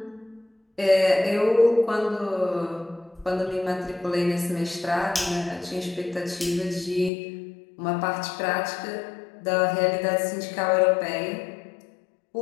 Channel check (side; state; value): right; drops out; at 7.1 s